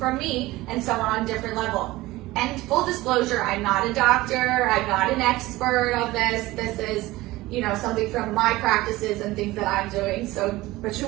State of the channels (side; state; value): left; quieter; 18.7 dB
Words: me, and someone on a different level. And full disclosure, I'm not a doctor, I'm not an expert of this. This is, you know, something from my practices and things that I'm doing. So, But